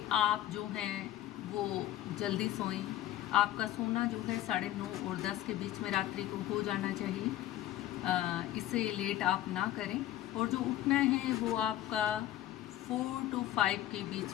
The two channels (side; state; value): right; quieter; 13.6 dB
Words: आप जो हैं वो जल्दी सोएं। आपका सोना जो है 9:30 और 10 के बीच में रात्रि को हो जाना चाहिए। इससे लेट आप ना करें। और जो उठना है वो आपका 4 to 5 के